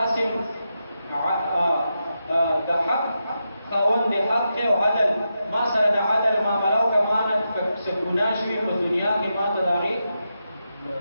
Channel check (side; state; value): both; inverted; correlation -0.87